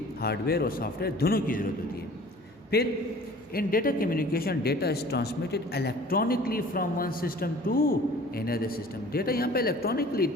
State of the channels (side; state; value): both; normal; correlation 0.47